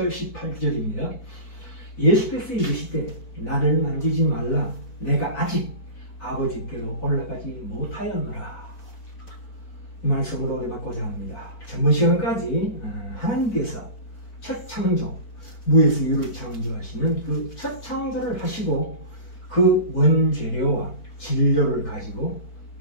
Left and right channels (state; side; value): late; right; 4.5 ms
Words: 18절입니다. 예수께서 이르시되 나를 만지지 말라 내가 아직 아버지께로 올라가지 못하였노라. 이 말씀으로 은혜받고자 합니다. 전번 시간까지 하나님께서 첫 창조, 무에서 유를 창조하시는 그 첫 창조를 하시고 그 원재료와 진료를 가지고